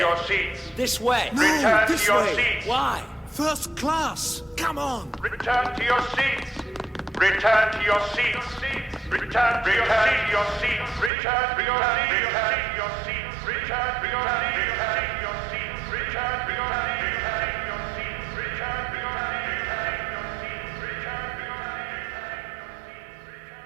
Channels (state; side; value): drops out; left; at 11.1 s